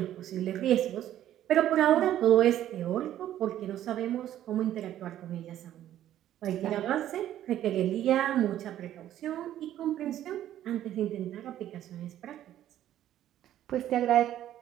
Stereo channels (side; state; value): left; quieter; 12.1 dB